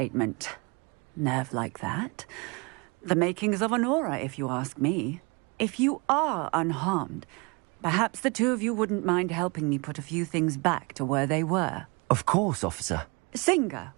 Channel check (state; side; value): quieter; left; 29.4 dB